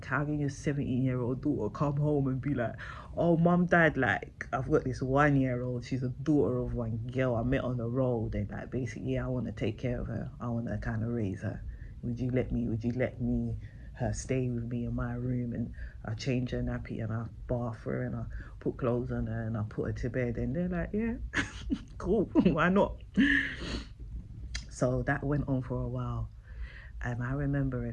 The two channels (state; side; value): identical; both; correlation 1.00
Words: how can your 17-year-old daughter come home and be like, oh, mum, dad, like, I've got this 1-year-old. She's a daughter of one girl I met on the road. And, like, basically, yeah, I want to take care of her. I want to kind of raise her. Would you let me her stay with me in my room? And I change her nappy and I bath her and I put clothes on her and I put her to bed. And they're like, yeah, cool. Why not? So that went on for a while. And I remember a